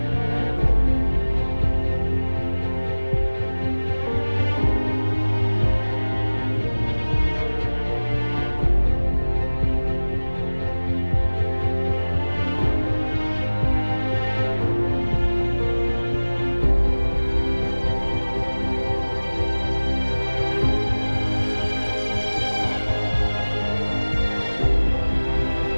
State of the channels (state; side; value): inverted; both; correlation -1.00